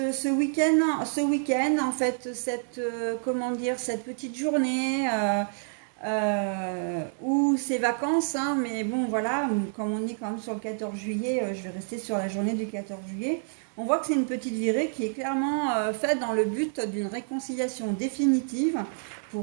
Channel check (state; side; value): silent; left; 59 dB below the other